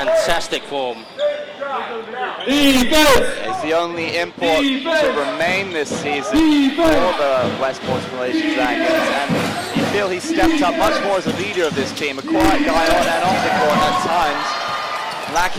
form. He's the only import to remain this season for the Westports Malaysia Dragons, and you feel he's stepped up much more as a leader of this team. A quiet guy on and off the court at times,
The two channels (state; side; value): identical; both; correlation 1.00